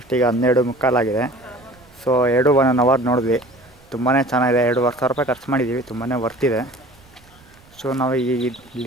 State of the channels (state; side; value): noise; right; rumble, 28 dB below the sound